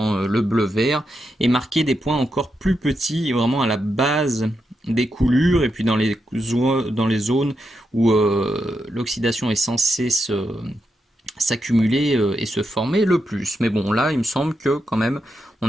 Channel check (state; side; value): normal; both; correlation 0.85